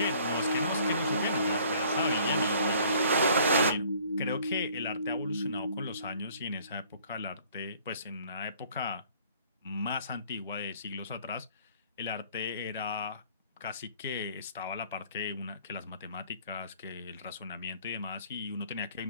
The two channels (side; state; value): both; inverted; correlation -0.56